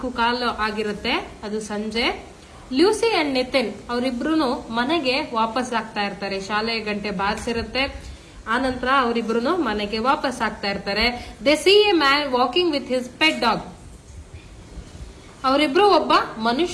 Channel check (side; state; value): both; identical; correlation 1.00